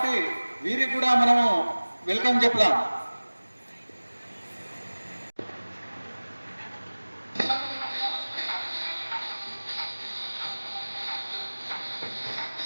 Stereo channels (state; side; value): inverted; both; correlation -1.00